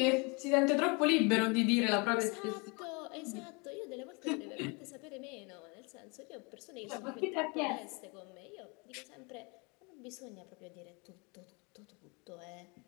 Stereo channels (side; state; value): right; quieter; 30.5 dB